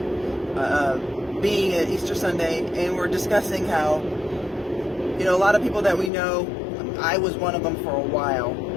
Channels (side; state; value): right; drops out; at 6.1 s